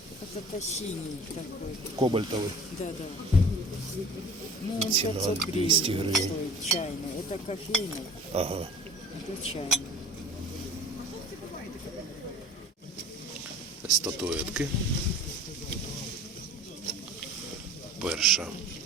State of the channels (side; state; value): both; normal; correlation 0.44